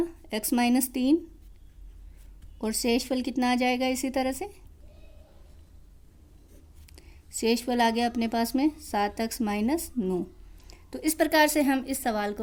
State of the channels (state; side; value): identical; both; correlation 1.00